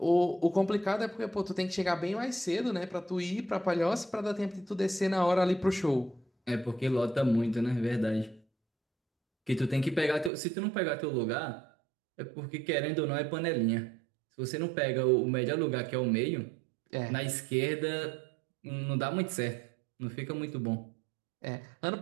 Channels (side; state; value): left; drops out; at 10.3 s